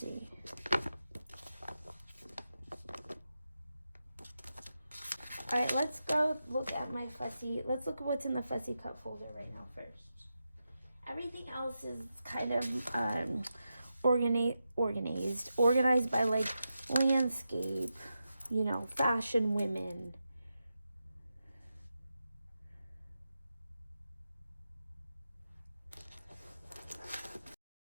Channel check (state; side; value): inverted; both; correlation -0.88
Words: All right, let's go look at my fussy, let's look at what's in the fussy cut folder right now first. Everything else is kind of organized by like landscape, you know, fashion women.